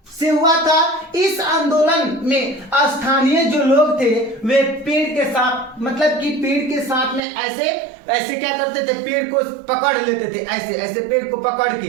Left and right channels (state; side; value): drops out; left; at 7.2 s